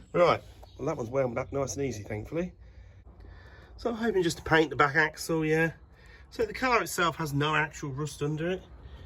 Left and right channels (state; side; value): identical; both; correlation 1.00